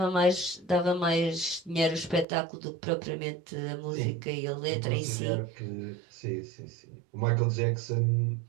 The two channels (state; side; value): drops out; left; at 2.2 s